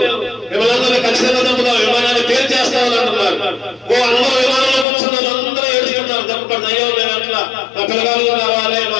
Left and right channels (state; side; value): drops out; right; at 4.9 s